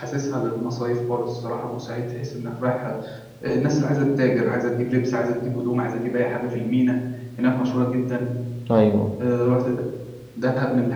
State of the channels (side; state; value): both; identical; correlation 1.00